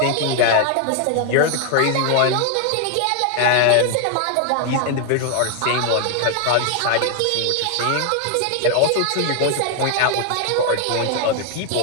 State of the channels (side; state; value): both; different; correlation 0.00